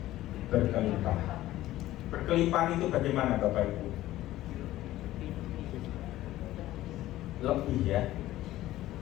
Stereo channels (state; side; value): quieter; right; 15.2 dB